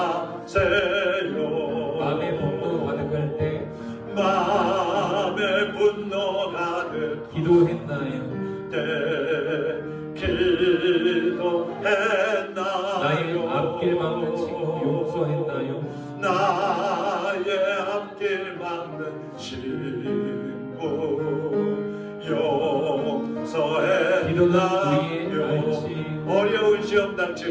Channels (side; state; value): both; identical; correlation 1.00